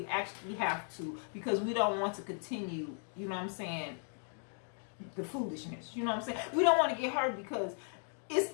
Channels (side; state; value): right; silent; 53 dB below the other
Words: actually have to, because we don't want to continue, you know what I'm saying, the foolishness. You know what I'm saying? We don't want to get hurt, because it's